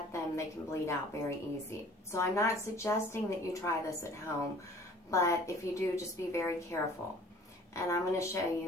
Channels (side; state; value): both; normal; correlation 0.51